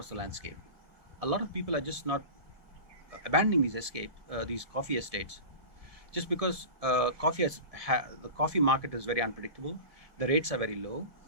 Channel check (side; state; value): left; late; 1.7 ms